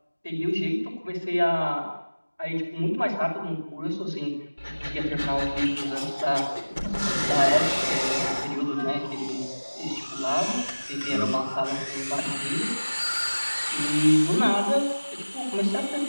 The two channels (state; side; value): inverted; both; correlation -1.00